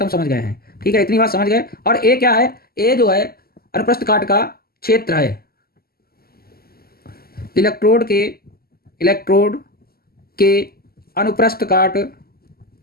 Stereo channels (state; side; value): late; right; 0.45 ms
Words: हम समझ गए हैं। ठीक है, इतनी बात समझ गए। और ए क्या है, ए जो है अनुप्रस्थ काट का क्षेत्र है, इलेक्ट्रोड के अनुप्रस्थ